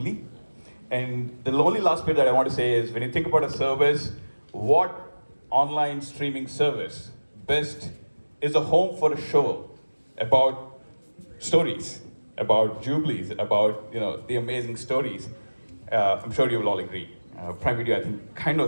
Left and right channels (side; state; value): both; inverted; correlation -1.00